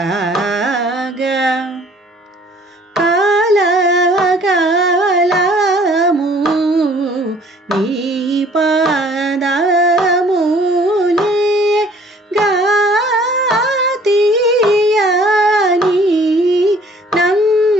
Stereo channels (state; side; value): normal; both; correlation 0.55